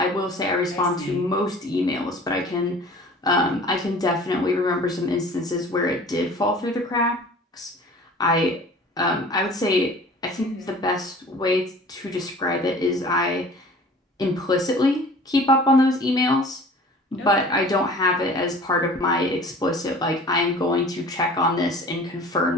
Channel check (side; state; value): both; normal; correlation 0.45